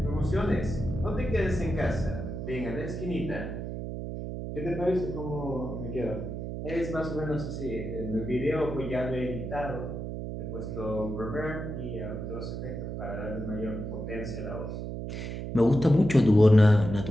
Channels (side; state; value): right; noise; hum, 6 dB below the sound